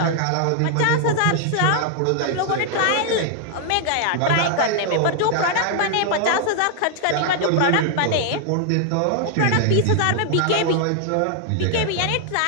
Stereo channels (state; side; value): different; both; correlation 0.00